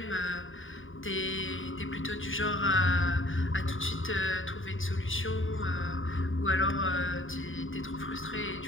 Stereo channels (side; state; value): right; late; 0.57 ms